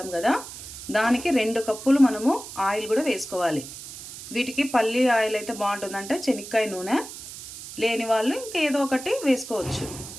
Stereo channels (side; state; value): right; noise; hiss, 12 dB below the sound